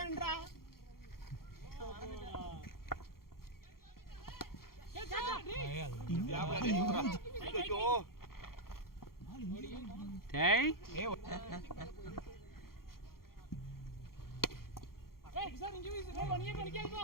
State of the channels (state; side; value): late; right; 0.93 ms